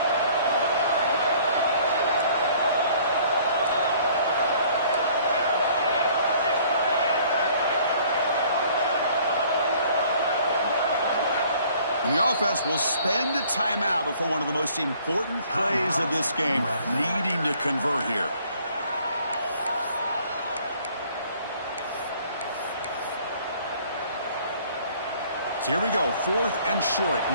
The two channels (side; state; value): both; inverted; correlation -0.57